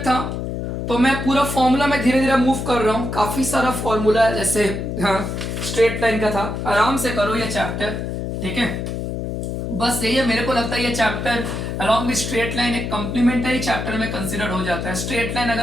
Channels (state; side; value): noise; left; hum, 4 dB below the sound